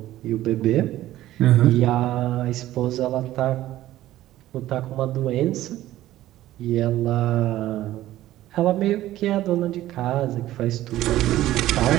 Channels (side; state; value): left; quieter; 14.6 dB